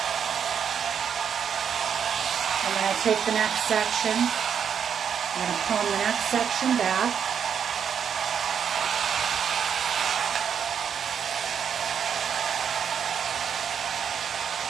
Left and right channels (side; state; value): left; quieter; 7.7 dB